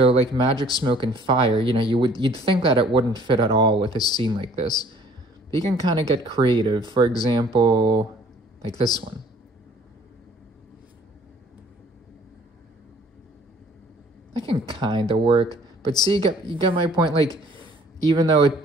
like magic, smoke, and fire, you know, you'd think that it wouldn't fit at all with a scene like this. But you can kind of get creative. For example, like this one. That can kind of work. But see, you get my point. Like, even though it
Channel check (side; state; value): both; normal; correlation 0.56